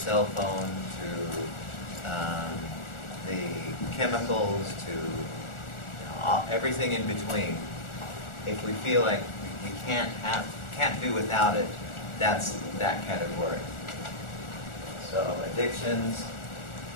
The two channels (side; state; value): right; late; 1.4 ms